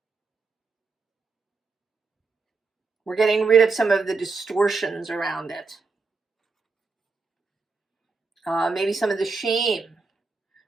We're getting rid of some of the distortions around it. Maybe some of the shame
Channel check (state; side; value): quieter; left; 4.1 dB